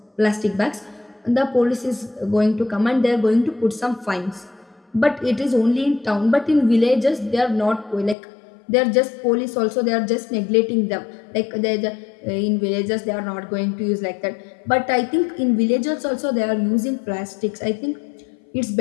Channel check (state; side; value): drops out; right; at 8.2 s